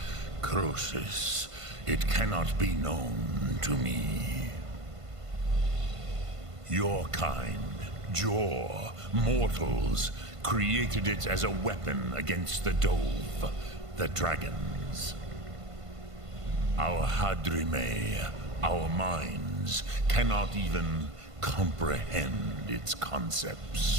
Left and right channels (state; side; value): late; left; 1.5 ms